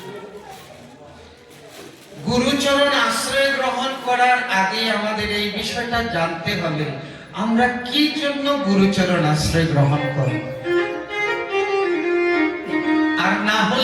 গুরুচরণ আশ্রয় গ্রহণ করার আগে আমাদের এই বিষয়টা জানতে হবে, আমরা কি জন্য গুরুচরণ আশ্রয় গ্রহণ করব। আর না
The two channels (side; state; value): both; identical; correlation 1.00